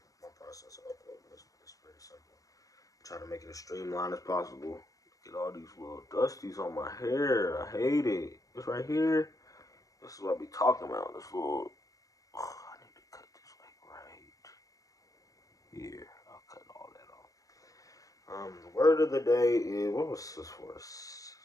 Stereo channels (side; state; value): right; late; 0.17 ms